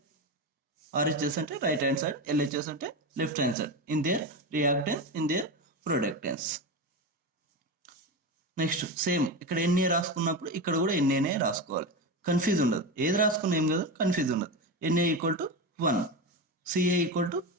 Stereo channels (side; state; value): both; normal; correlation 0.20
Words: అంటే రైట్ హ్యాండ్ సైడ్, ఎల్హెచ్ఎస్ అంటే left hand side. In their reactants, in their products. Next same ఇక్కడ ఎన్ని రాసుకున్నప్పుడు ఇక్కడ కూడా ఎన్ఏనే రాసుకోవాలి, కన్ఫ్యూజ్ ఉండదు. ఏది రాసుకున్నా ఏం కదా, కన్ఫ్యూజ్ ఉండదు. NA equal to 1, CA equal to